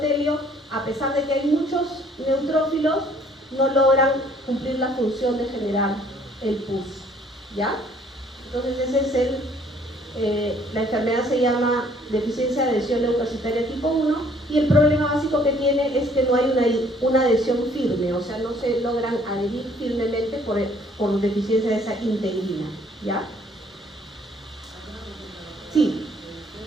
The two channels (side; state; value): both; normal; correlation 0.60